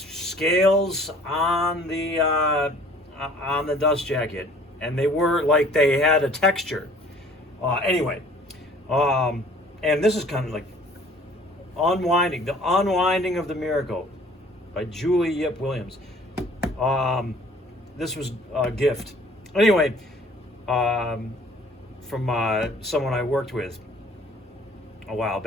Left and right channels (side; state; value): both; normal; correlation 0.53